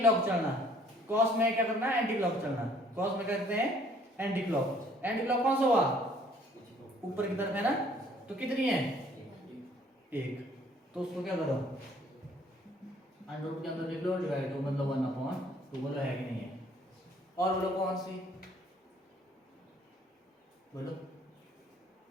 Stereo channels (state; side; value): normal; both; correlation 0.59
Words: चलना। कॉस में क्या करना है? एंटी क्लॉक चलना। कॉस में करते हैं एंटी क्लॉक। एंटी क्लॉक कौन सा हुआ? ऊपर की तरफ है ना, तो कितनी है? 1। तो उसको क्या करो, अंडर रूट के अंदर लिख लो, डिवाइड दो, मतलब 1/2। बोलो है कि नहीं है? और बोलो कौन सी? बोलो